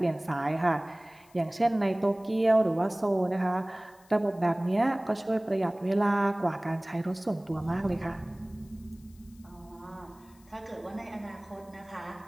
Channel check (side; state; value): left; noise; hiss, 29 dB below the sound